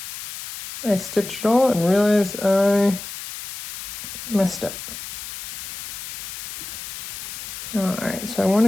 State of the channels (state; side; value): noise; left; hiss, 9 dB below the sound